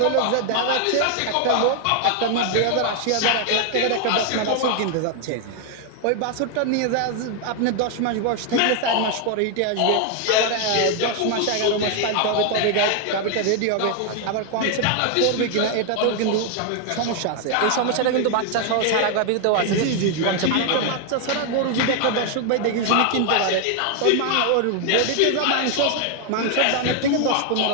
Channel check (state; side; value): different; both; correlation 0.00